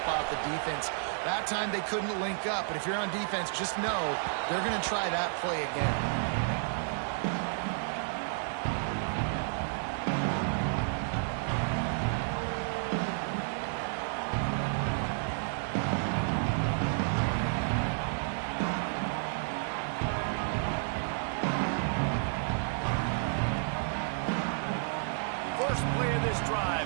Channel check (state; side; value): silent; left; digital silence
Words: off the defense. That time they couldn't link up, but if you're on defense, just know they're going to try that play again. Play of this